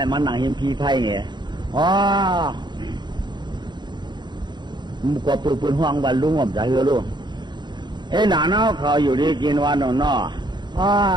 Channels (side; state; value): left; late; 0.21 ms